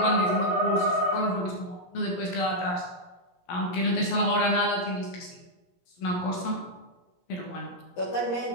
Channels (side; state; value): right; late; 17 ms